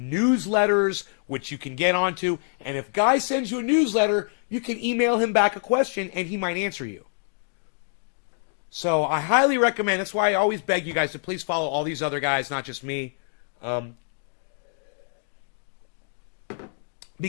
newsletters, which you can get onto. And if Guy sends you a newsletter, you can email him back a question, and he might answer you. So I highly recommend. That's why I always beg you guys to please follow all these other guys, not just me.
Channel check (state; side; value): silent; right; digital silence